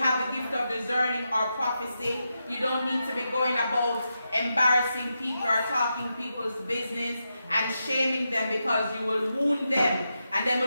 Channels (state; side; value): inverted; both; correlation -0.87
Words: the gift of discerning or prophecy, you don't need to be going about embarrassing people or talking people's business and shaming them, because you will wound them and they